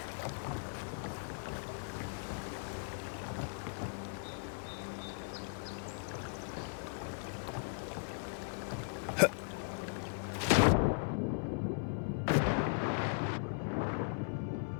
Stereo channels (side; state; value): right; silent; 53 dB below the other